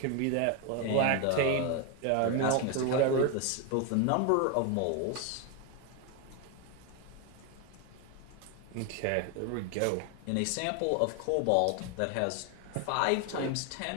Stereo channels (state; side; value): different; both; correlation 0.01